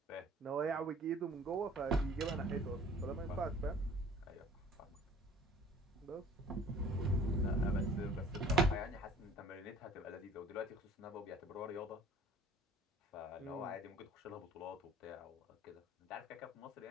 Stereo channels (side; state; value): both; normal; correlation 0.51